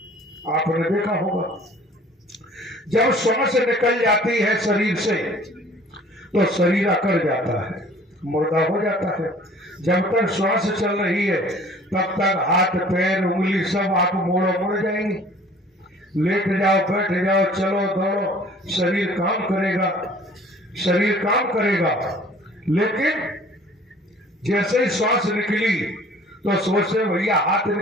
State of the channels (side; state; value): both; normal; correlation 0.51